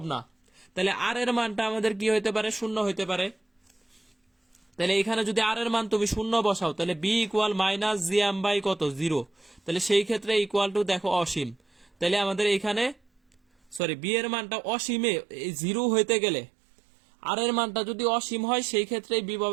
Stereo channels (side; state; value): left; drops out; at 13.8 s